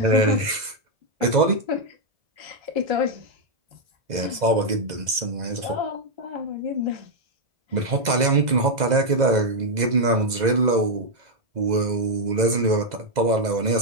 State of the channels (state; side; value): late; left; 2.0 ms